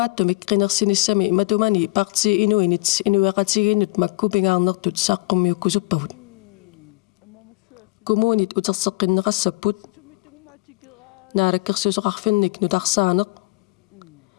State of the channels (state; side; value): quieter; right; 24.4 dB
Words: qinерсиниссами матумани парти инуинит инуяқатигииннут маккупингаарнертут сааққуммиуккусуппагут коммунит утерсеққиннеқассаппут наалаккерсусоқарфинник нутарсаанеқ